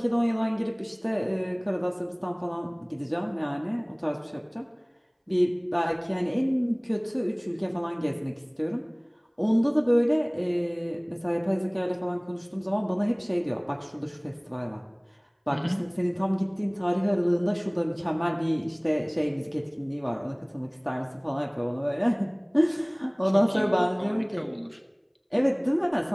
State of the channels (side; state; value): both; identical; correlation 1.00